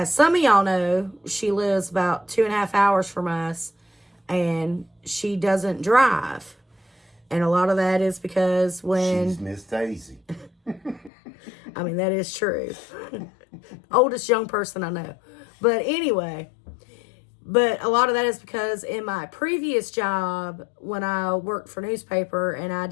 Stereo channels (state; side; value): drops out; right; at 11.1 s